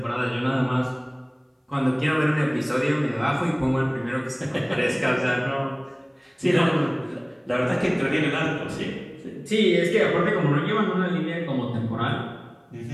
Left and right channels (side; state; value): both; identical; correlation 1.00